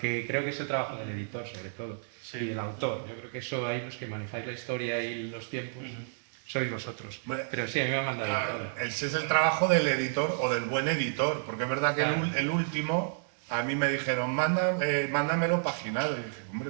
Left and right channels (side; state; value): left; silent; digital silence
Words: creo que es el trabajo del editor, sobre todo. Sí. Y del autor. Yo creo que eso hay los que manejáis la historia y los tiempos. Sois vosotros. Pero sí, a mí me han mandado todo. Ese es el trabajo del editor o del buen editor, porque es verdad que el último, a mí me dijeron, mándamelo paginado. Y dije, hombre,